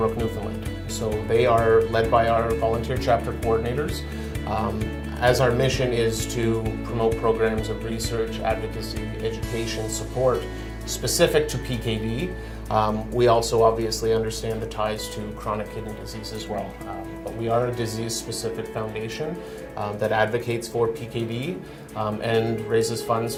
Newfoundland. So they are led by our volunteer chapter coordinators. As our mission is to promote programs of research, advocacy, education, support specific to PKD, we also obviously understand the ties to chronic kidney disease as well. But we are a disease-specific foundation that advocates for PKD and raises funds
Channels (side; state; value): both; identical; correlation 1.00